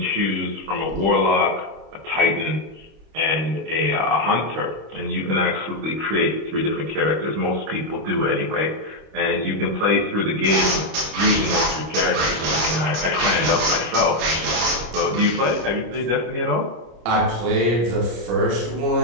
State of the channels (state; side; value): late; left; 26 ms